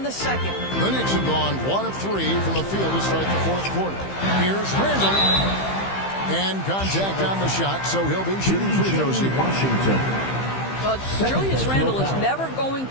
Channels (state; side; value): late; right; 15 ms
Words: the second. The Knicks have gone 1 of 3 from the field to start the fourth quarter. Here's Randall. And contact on the shot, so he'll be shooting free throws here. Washington. Julius Randle is never going